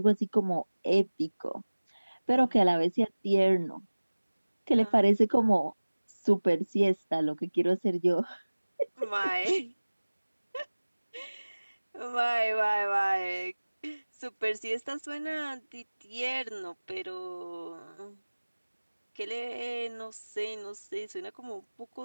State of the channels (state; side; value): inverted; both; correlation -1.00